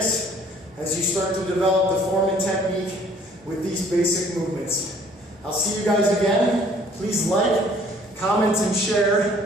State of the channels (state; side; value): normal; both; correlation 0.57